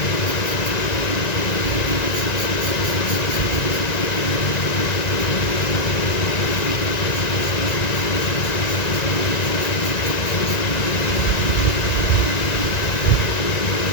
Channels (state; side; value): late; right; 1.9 ms